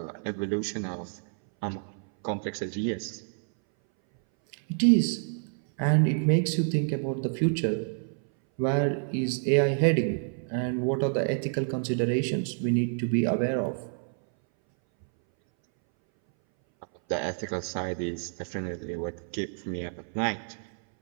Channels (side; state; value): left; silent; 59 dB below the other